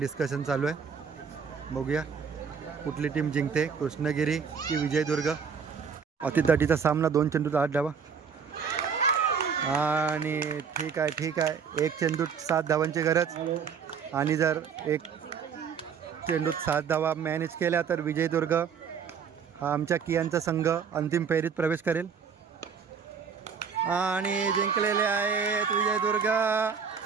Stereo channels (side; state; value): left; quieter; 6.5 dB